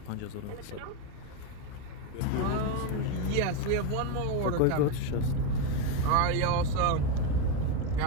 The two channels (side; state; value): both; different; correlation 0.03